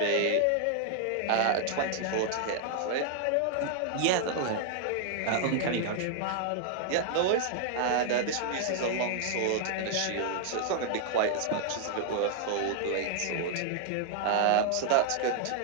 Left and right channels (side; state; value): both; different; correlation 0.00